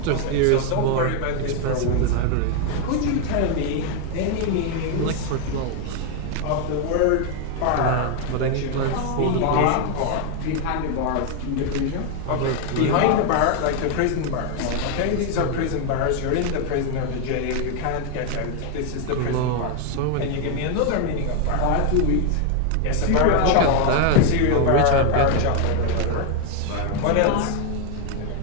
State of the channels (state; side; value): different; both; correlation 0.01